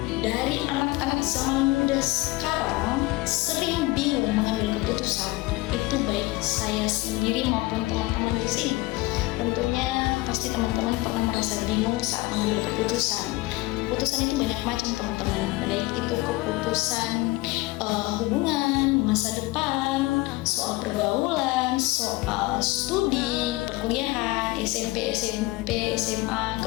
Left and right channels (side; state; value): right; quieter; 21.0 dB